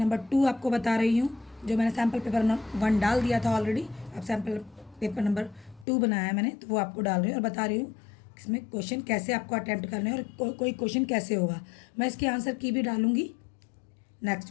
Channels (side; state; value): right; drops out; at 5.9 s